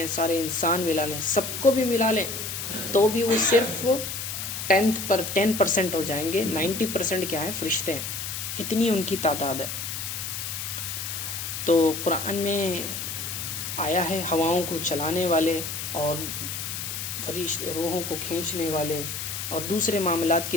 سارے انسان ملا لیں، سب کو بھی ملا لیں تو بھی وہ صرف 10% ہو جائیں گے. 90% کیا ہے؟ فرشتے ہیں. اتنی ان کی تعداد ہے. تو قرآن میں آیا ہے ہواؤں کو چلانے والے اور روحوں کو کھینچنے والے اور دوسرے معاملات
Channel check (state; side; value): noise; left; hiss, 5 dB below the sound